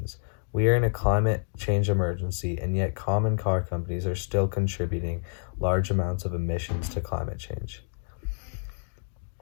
We are in a climate change emergency, and yet common car companies are still contributing large amounts of emissions to climate change.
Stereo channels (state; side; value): silent; right; digital silence